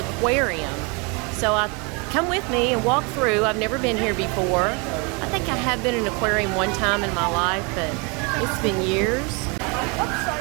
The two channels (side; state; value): left; quieter; 30.9 dB